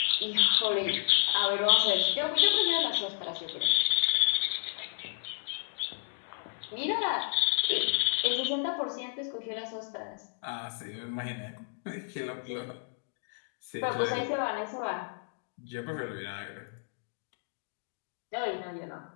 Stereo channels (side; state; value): right; silent; digital silence